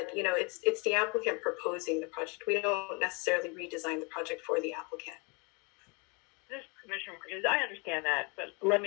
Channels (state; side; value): quieter; right; 30.9 dB